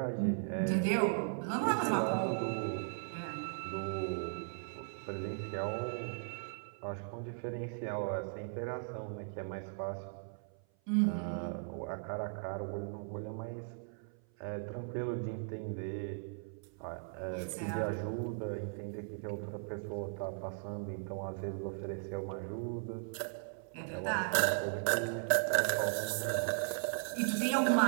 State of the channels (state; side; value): silent; left; 53 dB below the other